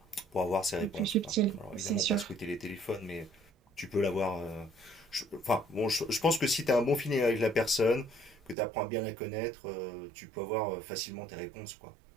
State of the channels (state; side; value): drops out; left; at 8.6 s